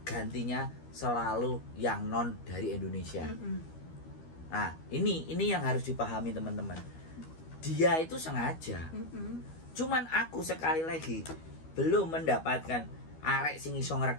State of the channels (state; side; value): late; right; 12 ms